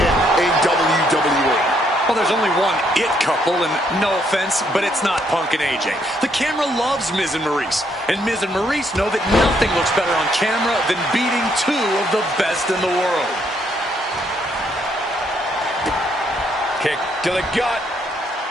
in WWE. Well, there's only one It Couple, and no offense, but it's not Punk and AJ. The camera loves Miz and Maurice, and Miz and Maurice know that nothing looks better on camera than beating two of the best in the world. Kick to the gut.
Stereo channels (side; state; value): both; normal; correlation 0.72